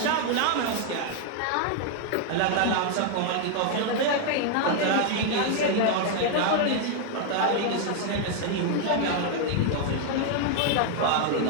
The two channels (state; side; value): different; both; correlation 0.00